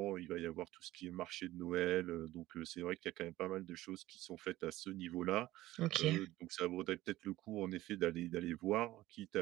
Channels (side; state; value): left; quieter; 16.4 dB